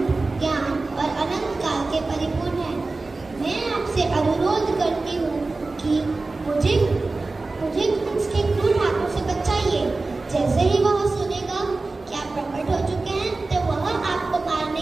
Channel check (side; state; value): left; quieter; 3.5 dB